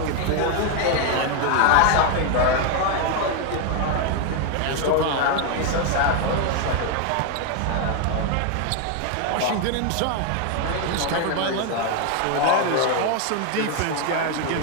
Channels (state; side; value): different; both; correlation 0.01